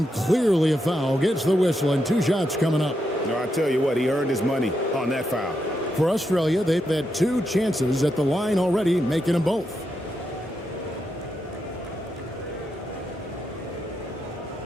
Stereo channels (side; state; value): both; normal; correlation 0.83